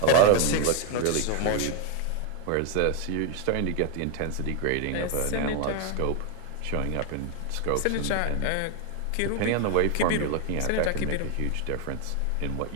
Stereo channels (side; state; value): both; different; correlation 0.01